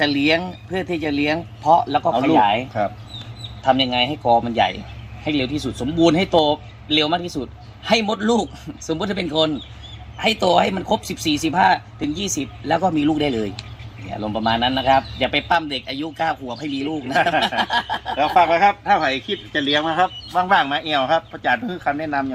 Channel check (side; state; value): both; identical; correlation 1.00